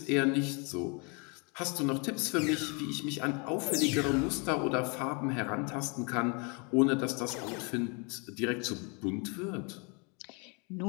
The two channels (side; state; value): right; quieter; 33.3 dB